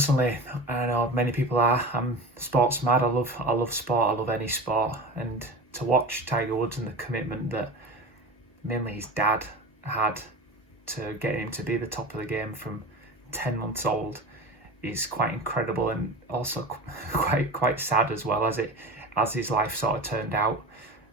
I know many people are, I'm sports mad. I love sport. I love any sport. And to watch Tiger Woods and the commitment that mainly his dad had to get him to be the top of the game from 10 months old is quite incredible, and also quite sad as well, as his life sort of turned out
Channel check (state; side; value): normal; both; correlation 0.31